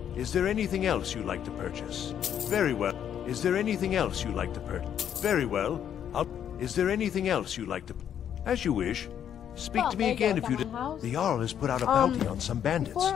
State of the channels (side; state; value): right; quieter; 9.4 dB